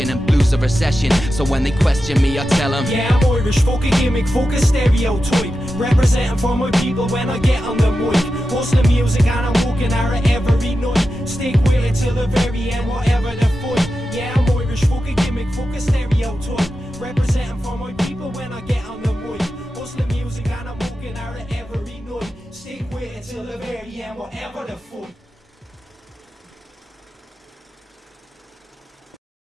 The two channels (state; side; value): normal; both; correlation 0.91